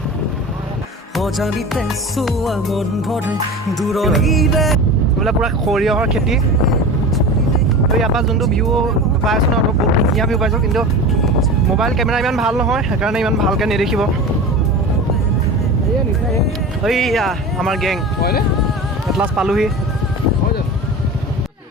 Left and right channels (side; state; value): both; normal; correlation 0.32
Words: বোলে পূৰা সৰিয়হৰ খেতি। তো ইয়াৰ পৰা যোনটো ভিউ পাই আছোঁ ন, বহুত ধুনীয়া ভিউ পাইছোঁ, কিন্তু মোবাইল কেমেৰা ইমান ভাল নহয়, সেইকাৰণে ইমান ভালকৈ নেদেখিব। এইয়া আমাৰ গেং এটলাছ পালোহি।